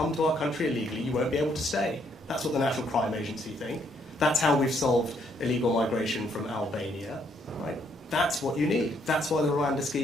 to our country illegally, you won't be able to stay. That's what the National Crime Agency think. That's how we've solved illegal migration from Albania. Right? That's what you need. That's why the Rwanda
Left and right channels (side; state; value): both; normal; correlation 0.71